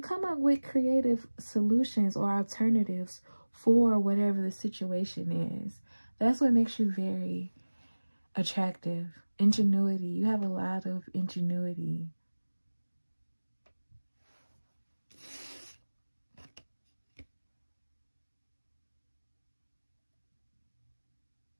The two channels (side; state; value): both; inverted; correlation -1.00